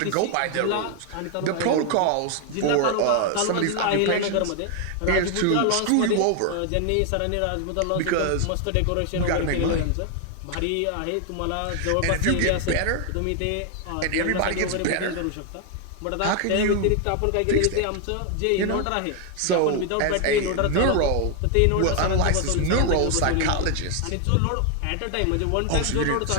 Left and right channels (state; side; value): different; both; correlation 0.00